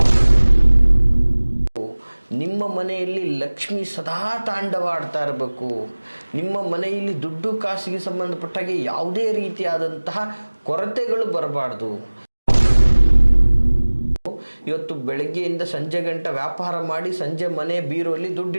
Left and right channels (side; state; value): both; inverted; correlation -1.00